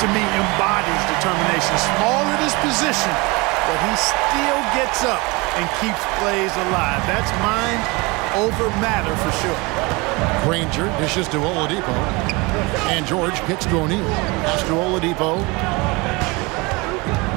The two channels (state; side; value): quieter; left; 25.9 dB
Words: me, embodies determination. Small at his position, but he still gets up and keeps plays alive. That's mind over matter for sure. Granger dishes to Oladipo. And George kicks to O'Neal. Pass to Oladipo.